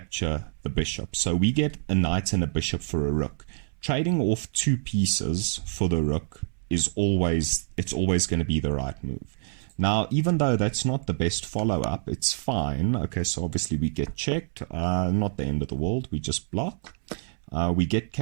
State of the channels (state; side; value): silent; left; 60 dB below the other